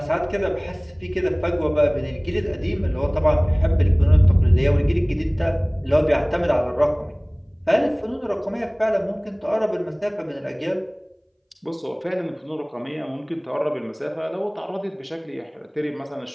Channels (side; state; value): both; identical; correlation 1.00